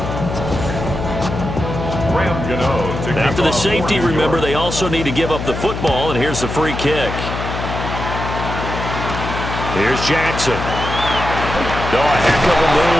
After the safety, remember, they also need to give up the football, and here's the free kick. Here's Jackson. Oh, a heck of a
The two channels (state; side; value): noise; left; hum, 5 dB below the sound